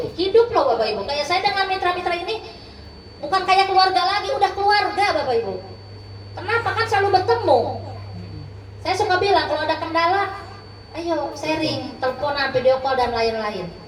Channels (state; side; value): identical; both; correlation 1.00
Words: loh Bapak Ibu. Kayak saya dengan mitra-mitra ini bukan kayak keluarga lagi, udah keluarga Bapak Ibu. Kenapa? Kan selalu bertemu. Saya suka bilang kalau ada kendala, ayo sharing, teleponan, video call dan lain-lain.